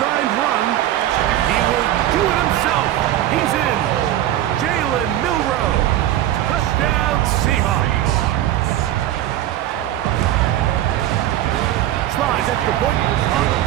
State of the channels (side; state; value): left; quieter; 13.0 dB